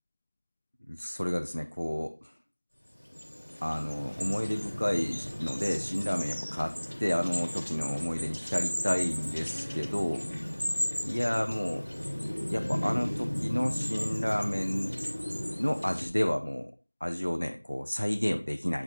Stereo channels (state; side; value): inverted; both; correlation -1.00